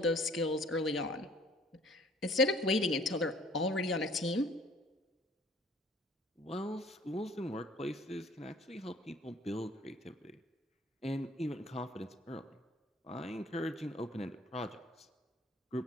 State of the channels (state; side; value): normal; both; correlation 0.55